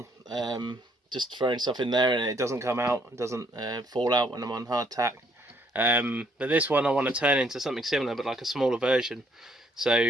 just throwing stuff in there and it doesn't come out, it doesn't fall out when I'm on hard tack. But this one I want to turn into something similar, but like a smaller version.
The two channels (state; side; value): normal; both; correlation 0.68